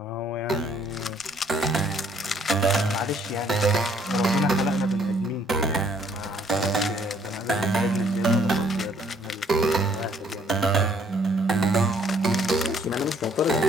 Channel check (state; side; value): normal; both; correlation 0.63